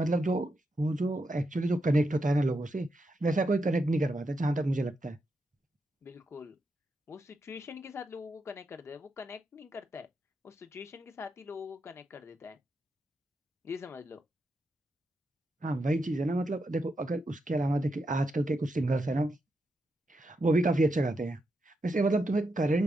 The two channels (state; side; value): normal; both; correlation 0.84